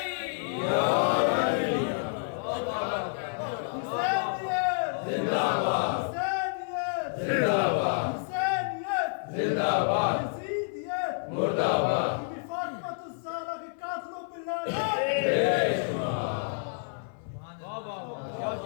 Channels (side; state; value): right; silent; 57 dB below the other